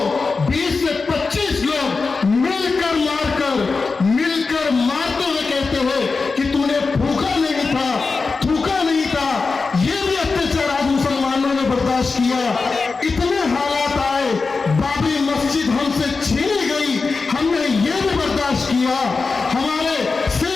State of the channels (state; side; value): quieter; right; 4.3 dB